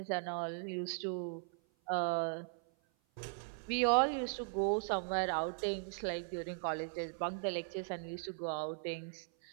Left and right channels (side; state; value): left; silent; 52 dB below the other